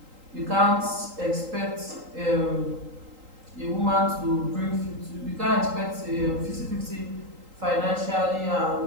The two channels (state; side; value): late; left; 3.8 ms